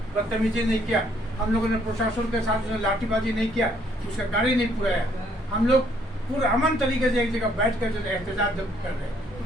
बदतमीजी नहीं किया, हम लोगों ने प्रशासन के साथ लाठीबाजी नहीं किया, उसका गाड़ी नहीं पुराया। हम लोग पूरा अमन तरीके से एक जगह बैठ कर जो एहतजाज कर रहे हैं,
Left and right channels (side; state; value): both; normal; correlation 0.66